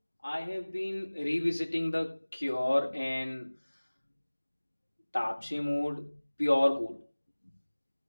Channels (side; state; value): both; inverted; correlation -1.00